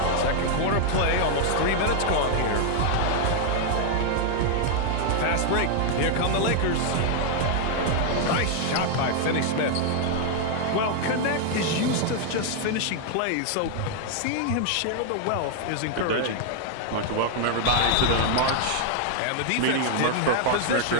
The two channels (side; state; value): both; different; correlation 0.00